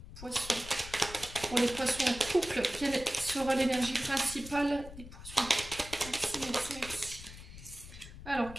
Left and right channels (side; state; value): left; noise; rumble, 14 dB below the sound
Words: poisson. Pour les poissons en couple, quelle sera l'énergie principale des poissons? Merci. Alors,